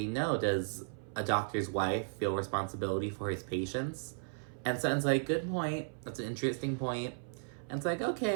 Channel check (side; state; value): left; silent; 54 dB below the other